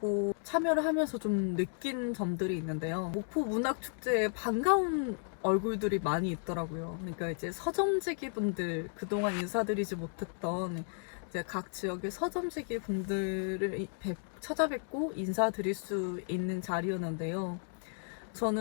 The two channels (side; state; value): right; silent; 55 dB below the other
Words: 참여를 하면서 좀 느낀 점들이 있는데요. 목포 문학 축제에 반가운 얼굴들이 많이 있더라고요. 그러니까 이제 서점지기 분들, 그동안 인사드리지 못했던 이제 각 지역의 서점지기 분들을 찾아뵙고 인사드릴 수 있는 자리였는데요.